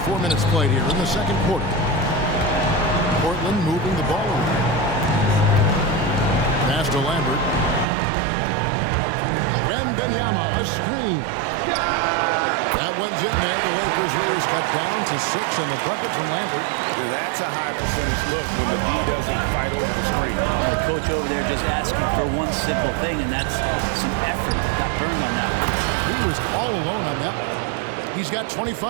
4 minutes played here in the second quarter. Portland moving the ball around. Pass to Lambert. Wembanyama, a screen. That one's in there. The Lakers lead is cut down to 6 and the bucket from Lambert. That's a high percentage look when the D doesn't fight over the screen. The coach over there just asking for one simple thing, and that's some effort. Got burned on that one. He was all alone on that one. He's got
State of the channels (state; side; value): drops out; left; at 7.9 s